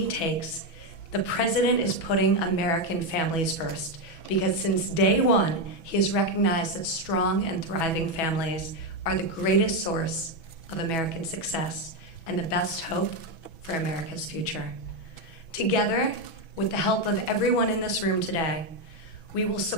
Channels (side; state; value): right; late; 6.1 ms